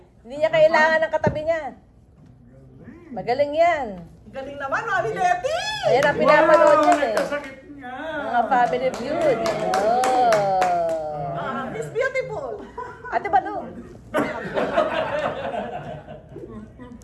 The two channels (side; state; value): both; identical; correlation 1.00